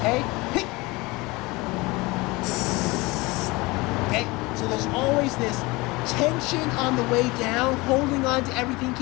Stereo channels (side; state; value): right; quieter; 23.3 dB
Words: Okay, so there's always this tension on the way down, holding on to everything,